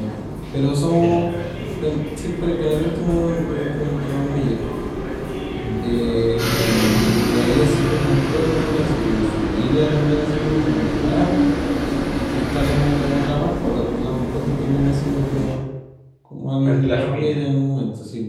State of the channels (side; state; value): both; identical; correlation 1.00